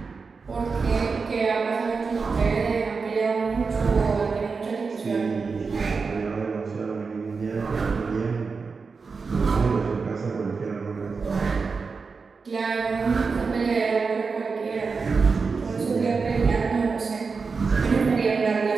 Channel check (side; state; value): left; quieter; 4.8 dB